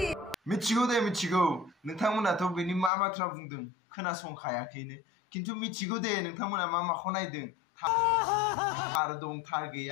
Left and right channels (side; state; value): right; drops out; at 2.9 s